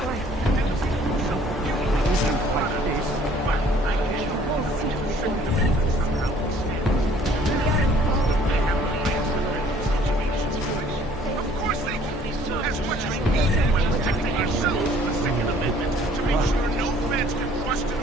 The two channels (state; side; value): normal; both; correlation 0.57